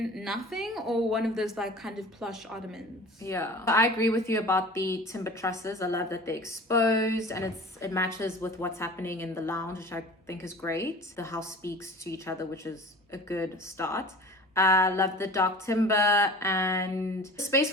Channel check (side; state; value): both; normal; correlation 0.40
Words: nothing, or one of those like kind of plush ottomans. Yeah, I agree with you about the timber trusses. I love that they're exposed and it matches with what's happening in the lounge, which I think is great. The house speaks to each other, which is a good start. I love the dark timber, and the space